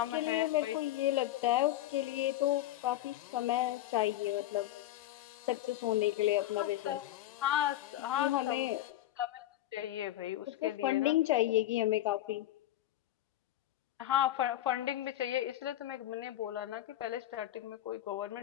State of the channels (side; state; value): right; quieter; 14.1 dB